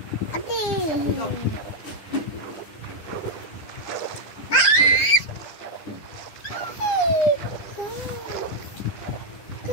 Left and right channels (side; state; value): right; late; 10 ms